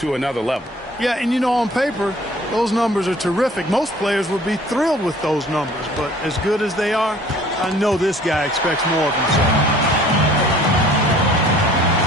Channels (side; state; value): both; normal; correlation 0.52